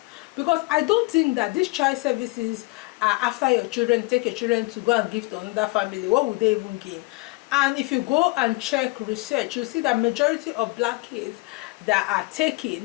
Because I don't think that these child services are after your children, take your children to go and give to another family. What would they even gain? And if you go and check research, you'll see that majority of black kids that are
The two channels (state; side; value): quieter; right; 25.4 dB